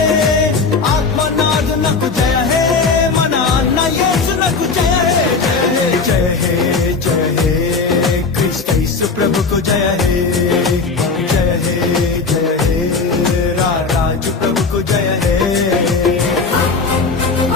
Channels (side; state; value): right; quieter; 4.4 dB